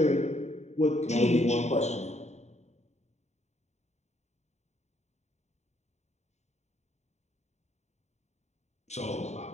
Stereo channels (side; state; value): right; late; 0.32 ms